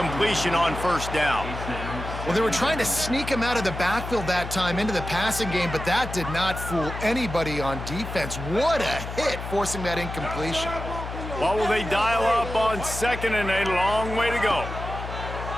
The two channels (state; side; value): noise; left; hum, 8 dB below the sound